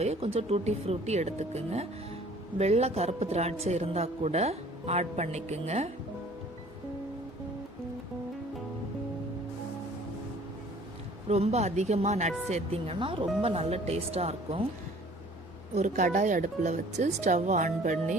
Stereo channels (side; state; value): both; normal; correlation 0.52